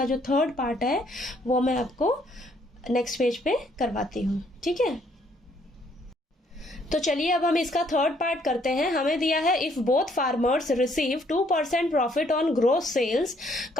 जो थर्ड पार्ट है वो मैं आपको नेक्स्ट पेज पे करवाती हूँ। ठीक है, तो चलिए अब हम इसका थर्ड पार्ट करते हैं। हमें दिया है if both farmers receive 2% profit on gross sales,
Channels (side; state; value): both; normal; correlation 0.66